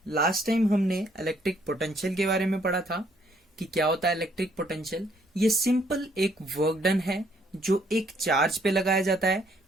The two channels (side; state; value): both; normal; correlation 0.67